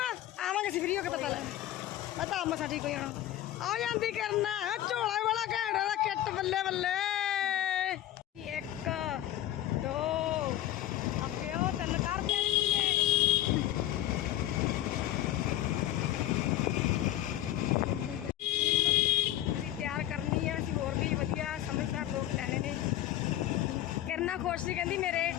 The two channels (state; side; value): quieter; right; 13.4 dB